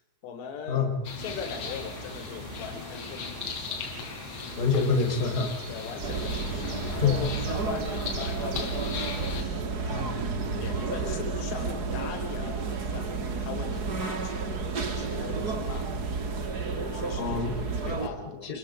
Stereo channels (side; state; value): left; late; 4.8 ms